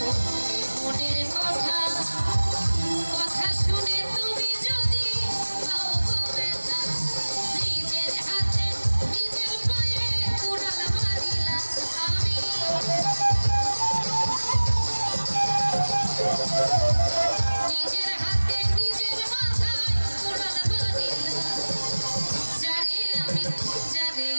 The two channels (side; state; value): both; inverted; correlation -1.00